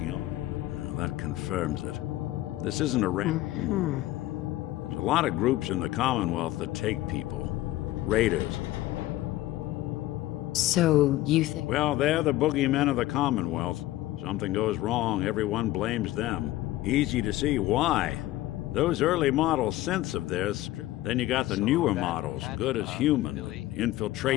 on. Well, that confirms it. This isn't a There's a lot of groups in the Commonwealth that take people. Raiders. So, you think... Well, they're the boogeymen of the Commonwealth. Something goes wrong, everyone blames them. Easy to see why. Those early model synths of theirs, then you got the newer models, good as human,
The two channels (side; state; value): right; quieter; 16.1 dB